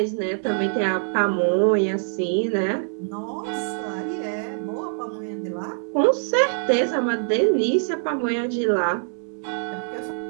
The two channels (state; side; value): silent; left; digital silence